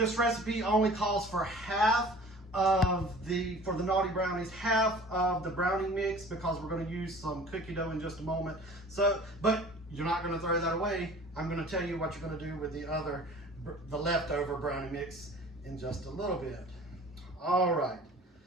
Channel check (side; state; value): both; normal; correlation 0.45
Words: recipe only calls for half of for the naughty brownies, half of the brownie mix, because we're going to use some cookie dough in just a moment. So, but you're not going to throw that away. I'm going to tell you what you're going to do with the leftover brownie mix in just a little bit. All right.